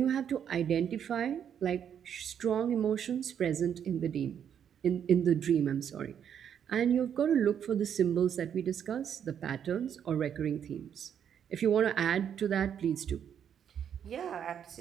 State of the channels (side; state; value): left; quieter; 8.6 dB